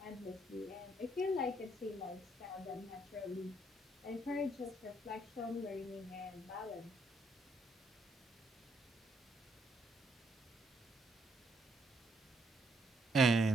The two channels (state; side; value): normal; both; correlation 0.73